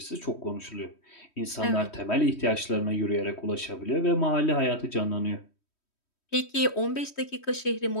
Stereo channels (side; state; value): right; late; 3.1 ms